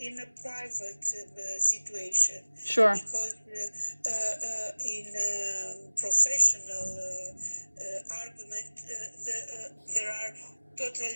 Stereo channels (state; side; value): inverted; both; correlation -1.00